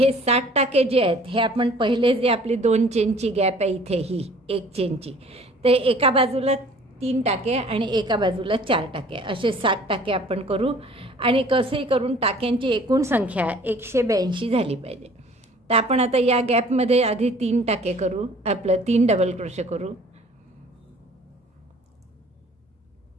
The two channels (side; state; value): both; normal; correlation 0.52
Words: 60 टाके जे आहेत हे आपण पहिले जे आपली 2 चेनची गॅप आहे इथे ही 1 चेनची, ते एका बाजूला 3 टाके आणि एका बाजूला 4 टाके असे 60 टाके आपण करू. आणि कसंही करून टाक्यांची एकूण संख्या 182 झाली पाहिजे. तर आपण आता या गॅपमध्ये आधी 3 टाके करू, आपलं 3 डबल क्रोशे करू,